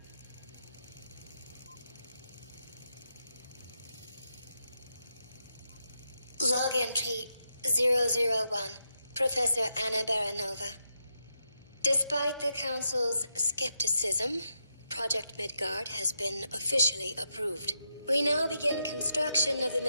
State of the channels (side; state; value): both; inverted; correlation -0.83